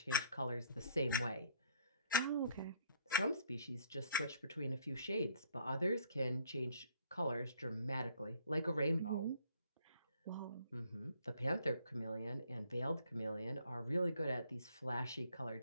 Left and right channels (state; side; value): inverted; both; correlation -0.63